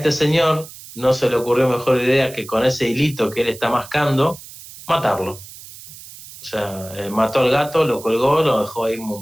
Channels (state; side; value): noise; right; hiss, 17 dB below the sound